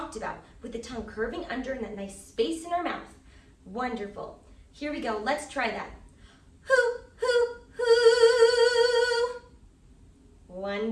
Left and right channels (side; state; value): both; identical; correlation 1.00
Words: about with the tongue curving under and that nice space in our mouth. Wonderful. Here we go. Let's try that. Hoo, hoo, hoo.